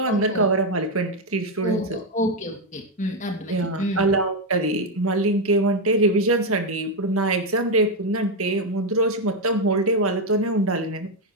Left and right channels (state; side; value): normal; both; correlation 0.05